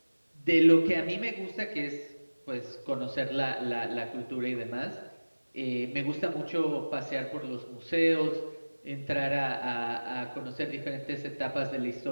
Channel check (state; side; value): inverted; both; correlation -1.00